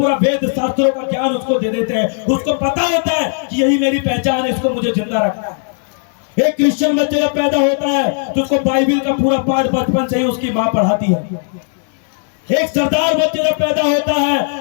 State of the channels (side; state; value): right; silent; digital silence